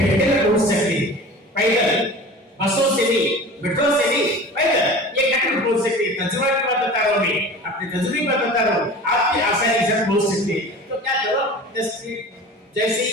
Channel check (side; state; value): both; normal; correlation 0.38